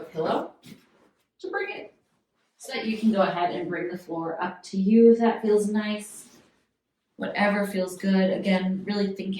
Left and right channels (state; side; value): identical; both; correlation 1.00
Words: to bring it so that you can go ahead and bring the floor up to you if that feels nice. Whatever feels good. Again, really